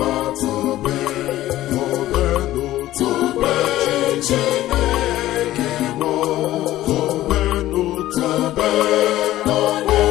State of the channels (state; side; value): quieter; right; 14.9 dB